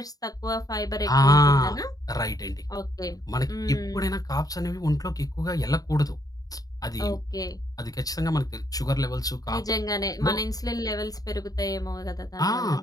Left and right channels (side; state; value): right; late; 0.18 ms